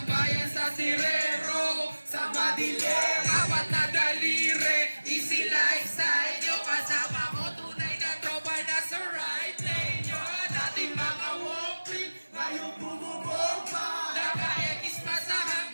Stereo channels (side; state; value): both; inverted; correlation -1.00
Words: sa sirero, sa madilim. Apat na daliri, easy life sa inyo. Kasama ko tunay na tropa na sa right lane nyo. Dating mga walking, Ngayon bumubomba! naka-ekis pa sa